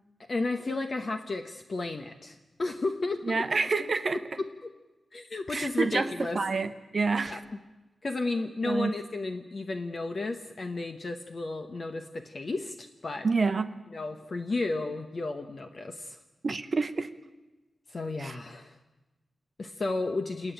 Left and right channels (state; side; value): normal; both; correlation 0.91